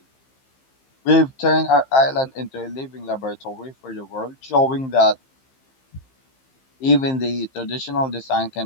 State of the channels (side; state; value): right; late; 15 ms